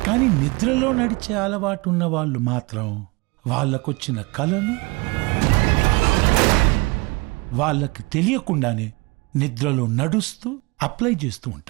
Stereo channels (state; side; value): quieter; left; 25.7 dB